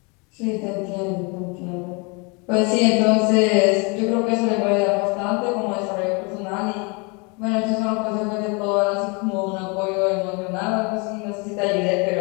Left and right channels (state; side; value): quieter; right; 31.0 dB